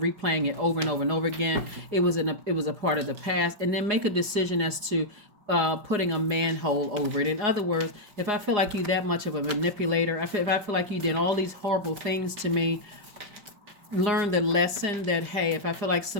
it over and over and over again. It was a part of the past, and then make a decision as to putting a manhole over it. In other words, if I feel like you that much of a manipulator, if I feel like you did all these horrible things to me, learn the lesson that, hey, if I feel like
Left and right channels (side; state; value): left; late; 4.9 ms